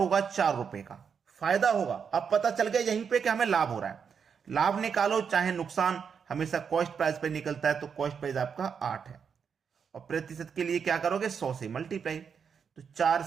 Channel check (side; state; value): left; quieter; 6.7 dB